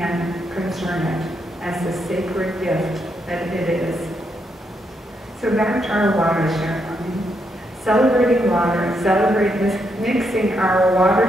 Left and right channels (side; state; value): both; normal; correlation 0.79